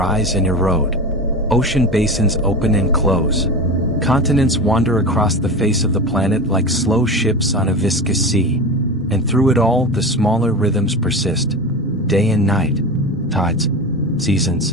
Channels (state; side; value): normal; both; correlation 0.26